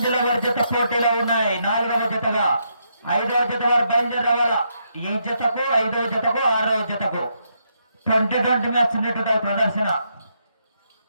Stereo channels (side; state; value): both; inverted; correlation -0.78